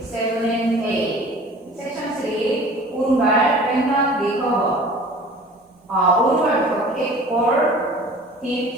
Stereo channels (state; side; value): normal; both; correlation 0.45